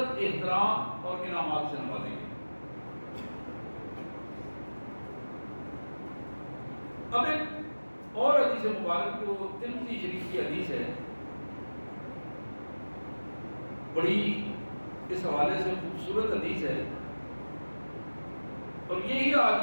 احترام اور انعامات سے نوازیں گے۔ اب ایک اور حدیث مبارک جو ترمذی شریف کی حدیث ہے، بڑی اس حوالے سے خوبصورت حدیث ہے، اور یہی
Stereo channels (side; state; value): both; inverted; correlation -1.00